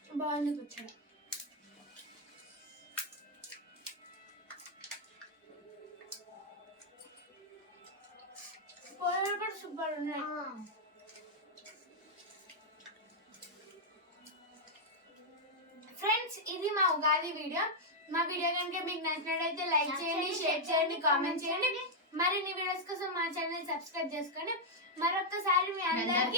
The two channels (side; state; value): both; normal; correlation -0.03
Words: బాగుంది పచ్చడి. పోలేలు కూడా సూపర్ ఉన్నాయి. ఫ్రెండ్స్ ఇది మా ఉగాది వీడియో. మా వీడియో కనుక మీకు నచ్చినట్లయితే లైక్ చేయండి, షేర్ చేయండి, కామెంట్ చేయండి. మరిన్ని వీడియోస్ కోసం మా ఛానల్ సబ్స్క్రైబ్ చేసుకోండి. మరొకసారి మీ